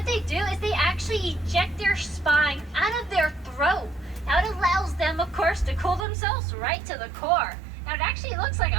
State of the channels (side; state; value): left; drops out; at 6.1 s